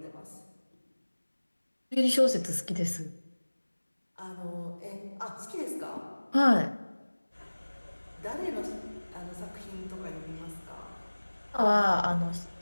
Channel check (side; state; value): both; inverted; correlation -1.00